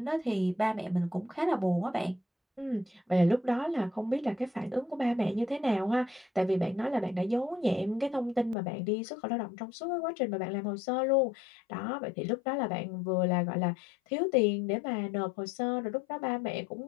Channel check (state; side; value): drops out; right; at 8.6 s